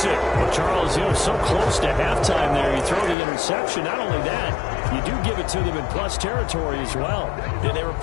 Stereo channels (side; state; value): right; drops out; at 3.2 s